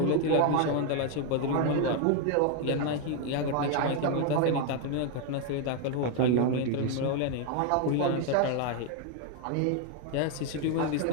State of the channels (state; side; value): different; both; correlation 0.01